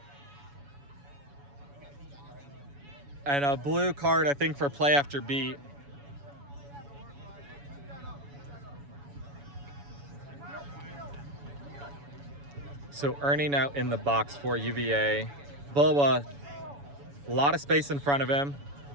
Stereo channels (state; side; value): late; left; 7.1 ms